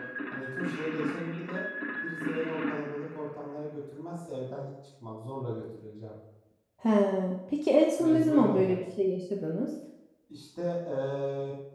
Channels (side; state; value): both; identical; correlation 1.00